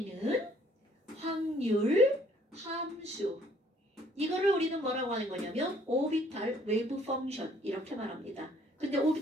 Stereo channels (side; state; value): both; normal; correlation 0.61